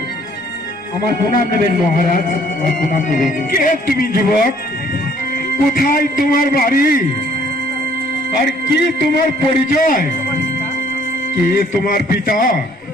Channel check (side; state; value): both; normal; correlation 0.61